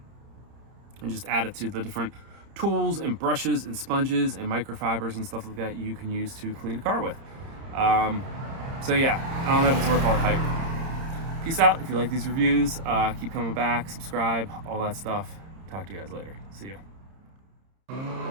just add it to the different tools and brushes and sponges and microfibers and stuff like that you can use to clean a car with. So yeah, I don't know if it's worth all the hype. Peace out. If you like these reviews, keep coming back, subscribe, all that stuff. Talk to you guys later. See ya.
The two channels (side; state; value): left; late; 30 ms